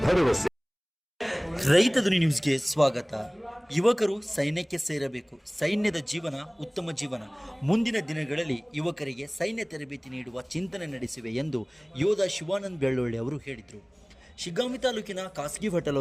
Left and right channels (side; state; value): both; identical; correlation 1.00